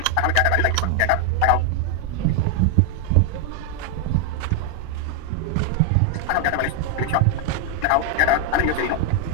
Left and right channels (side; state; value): both; different; correlation 0.00